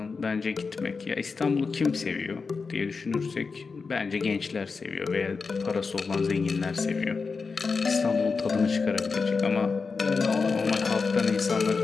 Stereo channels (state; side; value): quieter; right; 4.7 dB